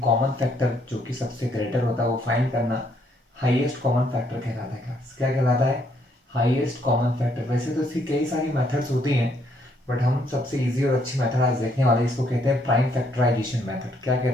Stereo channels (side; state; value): both; normal; correlation 0.70